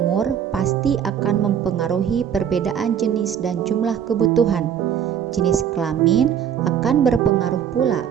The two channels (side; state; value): left; quieter; 8.7 dB